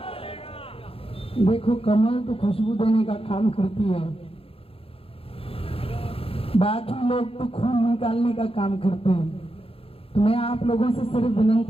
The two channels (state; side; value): late; right; 0.27 ms